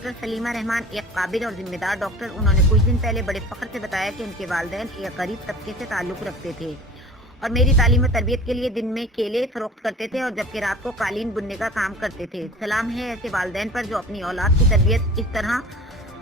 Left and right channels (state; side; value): normal; both; correlation 0.42